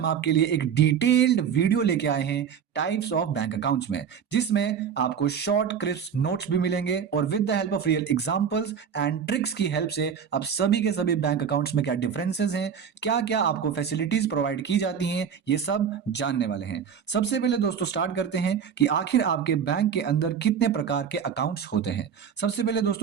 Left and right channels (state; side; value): quieter; left; 7.5 dB